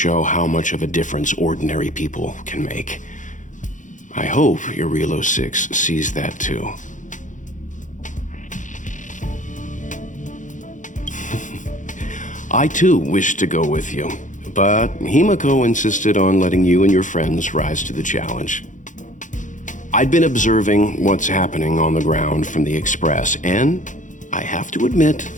how much of a difference ordinary people can make. I hope Eurilo 6 sees that too. I too wish to go with you, but Himiko insisted on letting you and your friends rise to the challenge. I'd been observing what's happening on the ground from the Express, and I have to admit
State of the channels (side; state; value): right; late; 0.37 ms